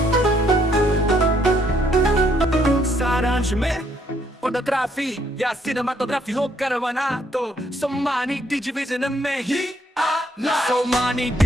सारांश में फोटोग्राफी या सिनेमाटोग्राफी हो करवाना तो सोमानी डिजिविजन में ही आना। सोमानी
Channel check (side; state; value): both; normal; correlation 0.70